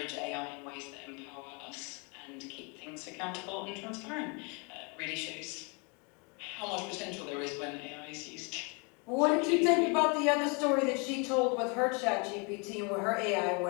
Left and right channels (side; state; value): right; quieter; 32.6 dB